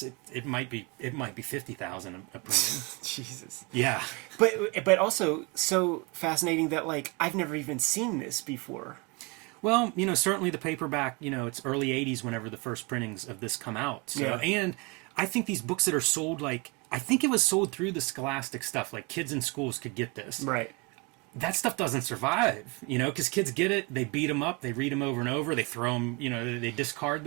it might be 50,000 a printing. Jesus. Yeah. But also so fascinating that like I've never even seen this before. Well, certainly the paperback, it's early 80s whenever the first printings of this come out. So, Yeah. And I think these books that are sold, like, I think it was sold through the Scholastic stuff. Like, kids in schools could get this. Right. That stuff doesn't survive, because kids get it, they beat them up, they read them over and over, they throw them, they discard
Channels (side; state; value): left; quieter; 27.4 dB